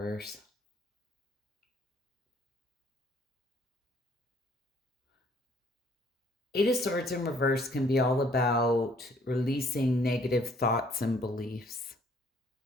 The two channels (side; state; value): both; normal; correlation 0.61